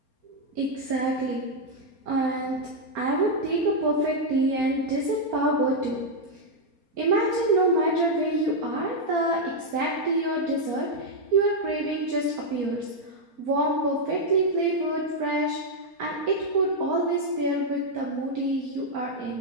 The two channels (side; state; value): left; late; 4.3 ms